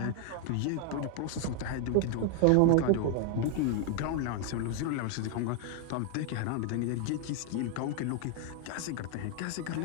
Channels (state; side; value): different; both; correlation 0.01